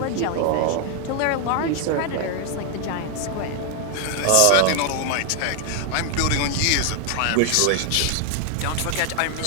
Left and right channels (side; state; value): both; different; correlation 0.01